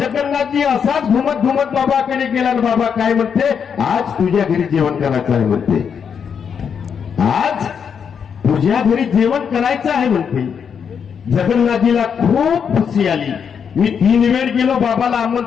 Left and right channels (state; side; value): quieter; right; 7.1 dB